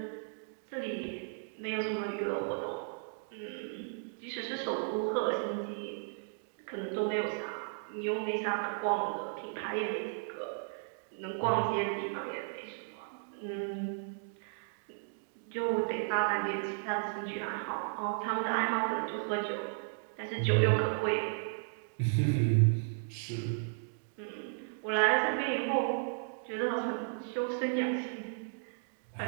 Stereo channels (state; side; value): silent; left; digital silence